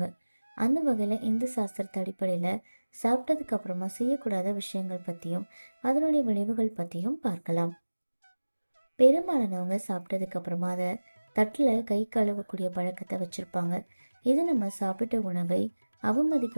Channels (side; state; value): both; inverted; correlation -1.00